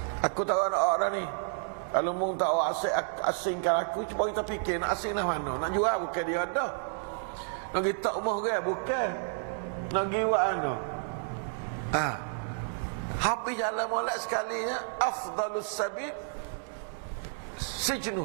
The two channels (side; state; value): left; silent; digital silence